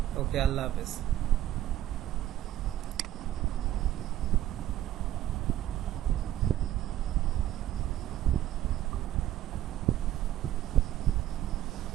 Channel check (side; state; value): left; quieter; 12.8 dB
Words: ওকে, আল্লাহ হাফেজ।